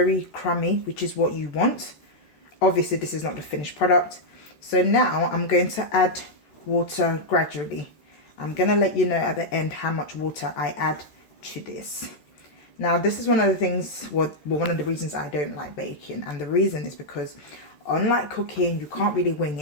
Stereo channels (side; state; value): right; late; 14 ms